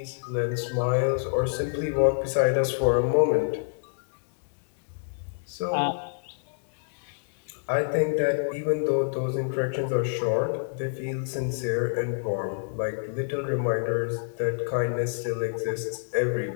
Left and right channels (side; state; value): right; silent; digital silence